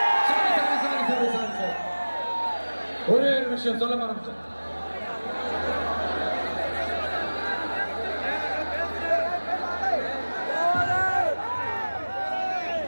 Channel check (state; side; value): inverted; both; correlation -1.00